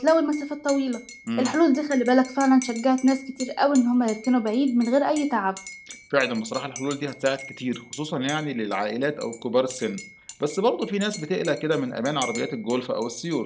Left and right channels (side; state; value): both; identical; correlation 1.00